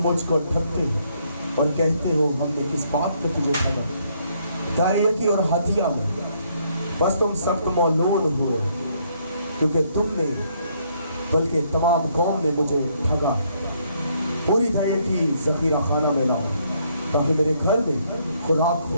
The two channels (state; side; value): inverted; both; correlation -0.70